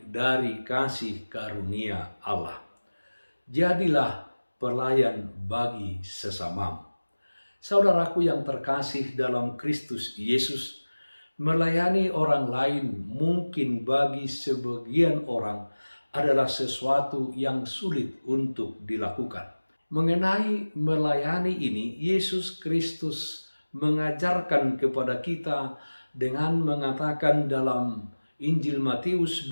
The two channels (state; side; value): inverted; both; correlation -1.00